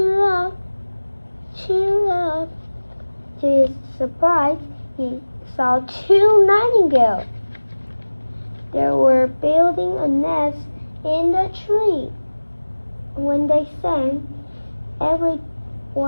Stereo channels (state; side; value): inverted; both; correlation -1.00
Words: up, cheer up. To his surprise, he saw two nightingales. They were building a nest in the tree. When they sang,